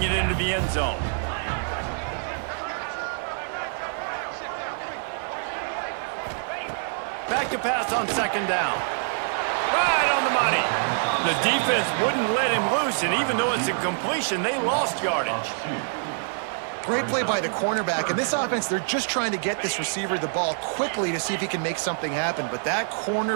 it into the end zone. Back to pass on 2nd down. Right on the money. The defense wouldn't let him loose, and even though it's a completion, they lost yardage. Great play by the cornerback. In this offense, they're just trying to get this receiver the ball quickly to see if he can make something happen. But that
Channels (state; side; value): silent; left; digital silence